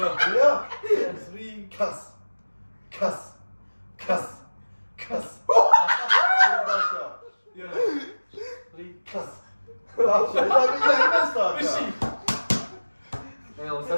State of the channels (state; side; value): inverted; both; correlation -1.00